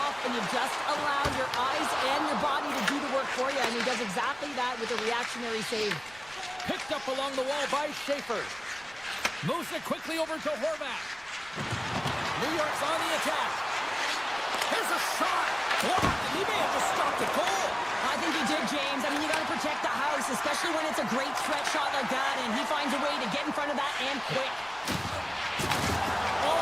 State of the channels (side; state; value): right; noise; rumble, 24 dB below the sound